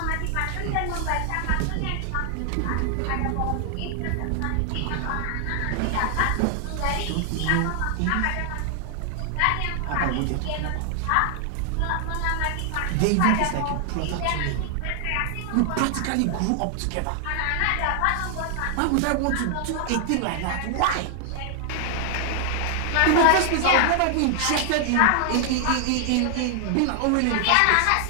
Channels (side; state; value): both; different; correlation 0.00